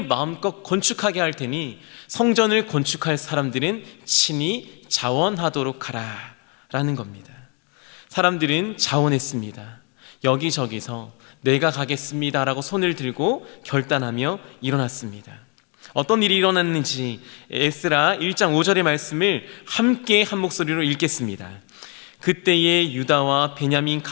마음껏 건축하게 할 테니 성전을 건축할 사람들은 친히 자원하도록 하라 라는 겁니다. 사람들은 자원했습니다. 여기저기서 내가 가겠습니다 라고 손을 들고 결단하며 일어났습니다. 어떤 일이 일어났는지 에스라 1장 5절의 말씀을 함께 한 목소리로 읽겠습니다. 그때에 유다와 베냐민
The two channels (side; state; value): right; quieter; 35.2 dB